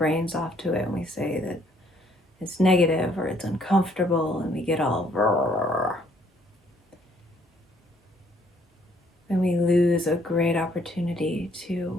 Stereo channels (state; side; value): normal; both; correlation 0.65